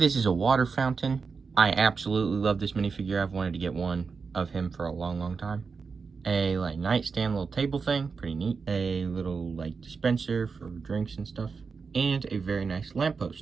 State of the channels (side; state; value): left; quieter; 5.1 dB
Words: is a water fountain. I absolutely love this minifigure. I've wanted to get one of him for a long time. A nightstand little table thing, pretty neat. A little dispenser for drinks and stuff. And a very nice